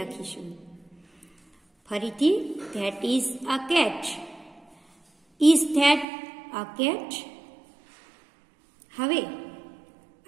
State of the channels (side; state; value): left; drops out; at 6.1 s